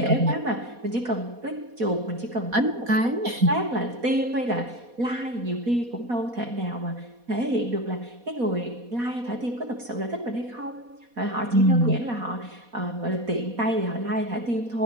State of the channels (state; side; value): late; left; 4.2 ms